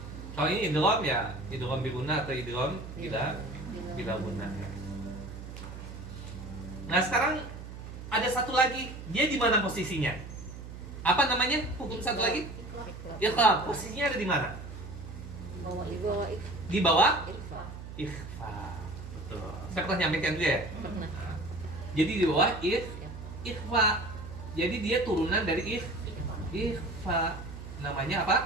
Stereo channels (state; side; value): noise; right; hum, 11 dB below the sound